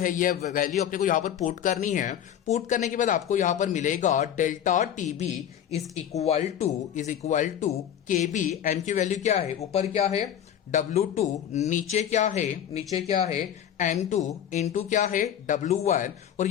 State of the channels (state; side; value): quieter; right; 9.9 dB